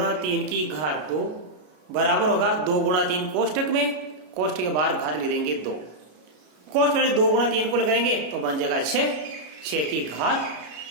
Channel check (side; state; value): left; late; 33 ms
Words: 3 की घात 2 बराबर होगा 2 गुणा 3 कोष्टक में, कोष्टक के बाहर घात लिख देंगे 2, कोष्टक में 2 गुणा 3 को लगाएंगे तो बन जाएगा 6, 6 की घात